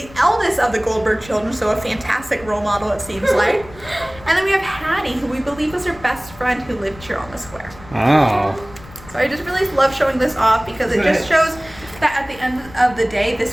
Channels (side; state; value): left; noise; rumble, 19 dB below the sound